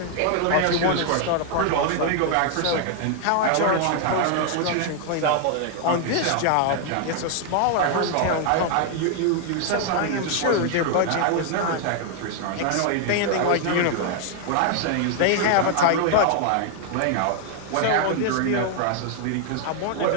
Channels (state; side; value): different; both; correlation 0.00